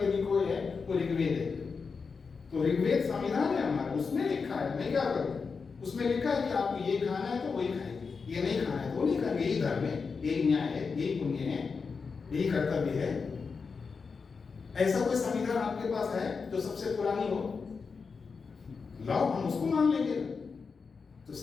यदि कोई है वो ऋग्वेद है। तो ऋग्वेद संविधान है हमारा, उसमें लिखा है। मैं क्या करूं? उसमें लिखा है कि आपको ये खाना है तो वही खाएंगे, ये नहीं खाना है तो नहीं खाएंगे। यही धर्म है, यही न्याय है, यही पुण्य है, यही कर्तव्य है। ऐसा कोई संविधान आपके पास है जो सबसे पुरानी हो? लाओ, हम उसको मान लेंगे। तो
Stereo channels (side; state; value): right; quieter; 5.1 dB